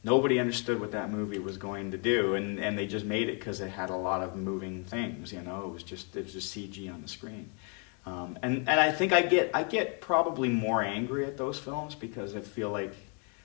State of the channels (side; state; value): right; quieter; 37.8 dB